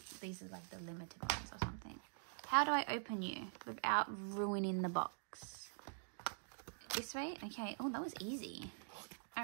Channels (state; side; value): silent; left; digital silence